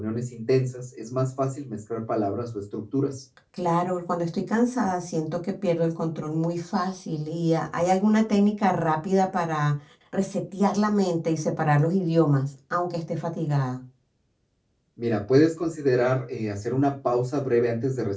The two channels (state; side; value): identical; both; correlation 1.00